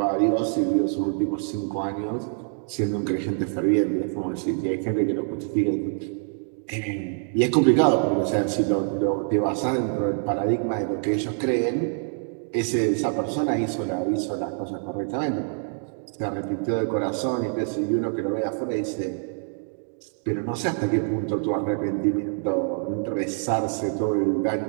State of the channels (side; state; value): left; silent; 60 dB below the other